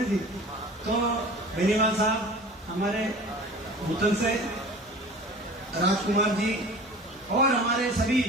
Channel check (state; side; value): normal; both; correlation 0.41